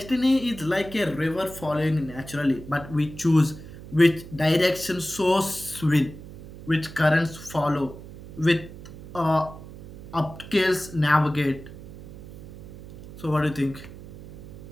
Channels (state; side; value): noise; right; hum, 15 dB below the sound